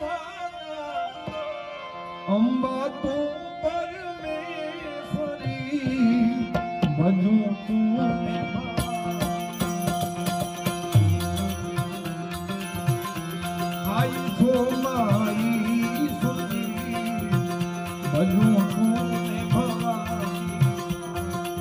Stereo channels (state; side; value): identical; both; correlation 1.00